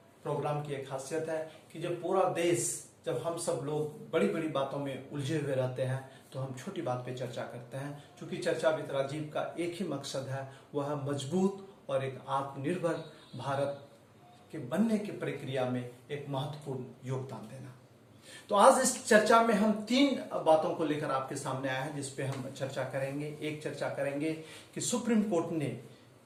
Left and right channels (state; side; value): identical; both; correlation 1.00